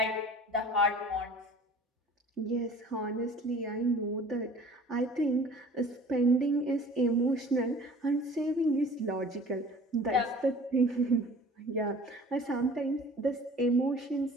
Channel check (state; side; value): normal; both; correlation 0.46